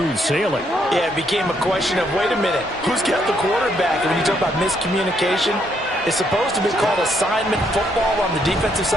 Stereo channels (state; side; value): normal; both; correlation 0.73